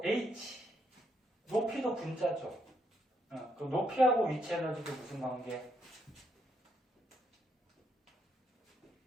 H, 높이도 분자죠. 그 높이하고 위치 에너지도 무슨 관계?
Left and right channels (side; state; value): both; normal; correlation 0.76